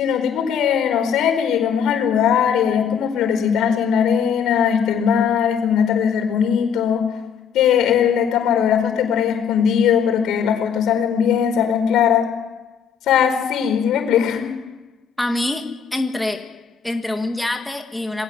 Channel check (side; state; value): right; quieter; 7.4 dB